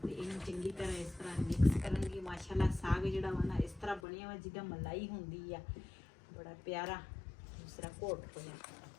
ਤੇ ਇਹਨੂੰ ਚੰਗੀ ਤਰ੍ਹਾਂ ਇਸ ਤਰ੍ਹਾਂ ਮਿਕਸ ਕਰਾਂਗੀ। ਮਾਸ਼ਾਅੱਲਾ ਸਾਗ ਜਿਹੜਾ ਵਾ ਨਾ ਇਸ ਤਰ੍ਹਾਂ ਬਣਿਆ ਵਾ ਜਿੱਦਾਂ ਮਲਾਈ ਹੁੰਦੀ ਆ, ਬੜਾ ਪਿਆਰਾ ਦੂਸਰਾ ਘੋਟ ਹੋਇਆ।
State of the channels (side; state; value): right; drops out; at 4.0 s